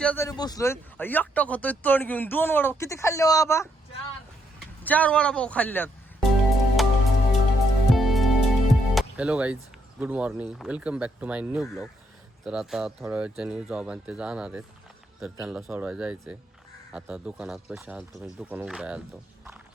बसलोय, एकटा खातोय तण घेऊन. 2 वडापाव किती खाल्ले बाबा? 4 वडापाव खाल्ल्यात. Hello guys, good morning, welcome back to my new blog. तर आता थोड्या वेळच्या न्यू जॉब आणि ते जाणार आहेत, तर त्यांना सोडवायला जायचं आहे. आता दुकानात पैसे आलतो, म्हणजे दुकान उघडाय आलतो.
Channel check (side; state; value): both; normal; correlation 0.76